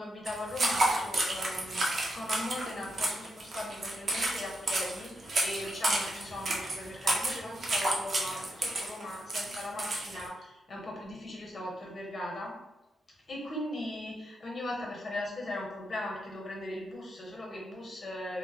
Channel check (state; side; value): normal; both; correlation 0.83